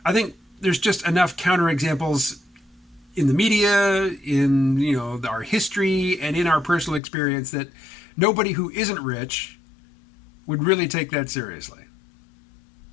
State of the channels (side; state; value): right; drops out; at 7.0 s